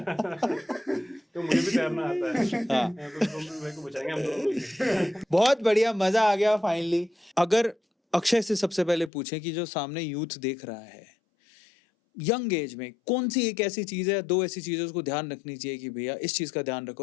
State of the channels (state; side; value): drops out; right; at 9.1 s